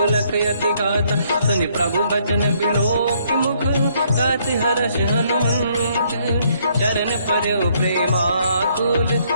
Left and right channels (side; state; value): both; inverted; correlation -0.68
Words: यति गाता सुनि प्रभु बचन बिलोक मुख गाति हर्ष हनुमंत चरण पर्यो प्रेमाकुल